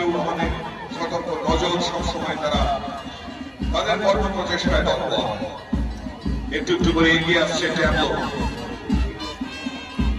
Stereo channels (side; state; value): both; identical; correlation 1.00